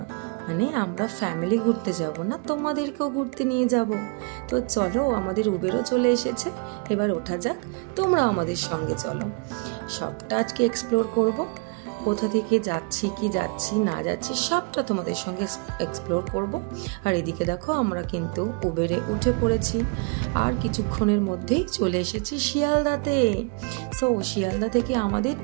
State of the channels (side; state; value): left; quieter; 32.9 dB